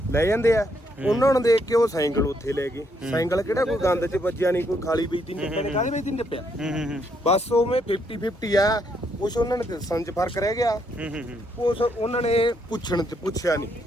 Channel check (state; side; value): normal; both; correlation 0.74